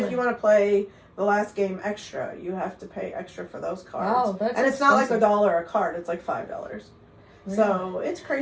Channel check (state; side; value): identical; both; correlation 1.00